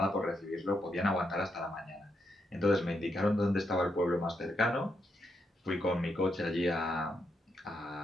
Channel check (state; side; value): normal; both; correlation 0.81